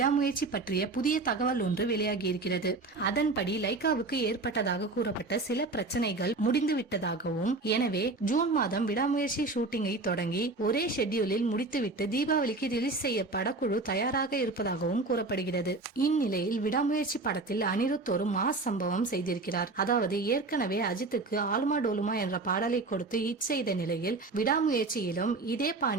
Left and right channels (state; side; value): quieter; left; 3.4 dB